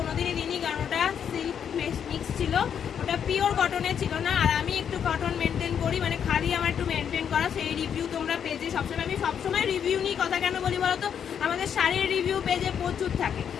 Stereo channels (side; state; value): right; quieter; 8.2 dB